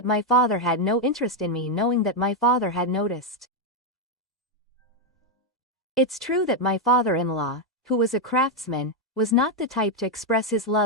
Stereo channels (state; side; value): normal; both; correlation 0.03